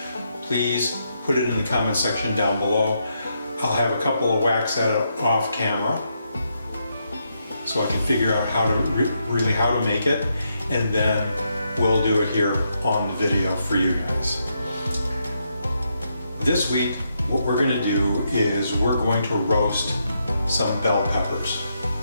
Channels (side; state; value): both; inverted; correlation -0.80